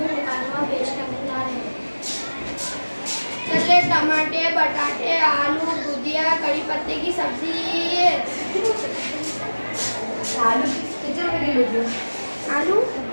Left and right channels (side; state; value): both; inverted; correlation -1.00